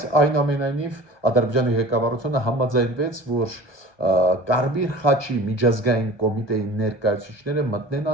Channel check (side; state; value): right; late; 1.2 ms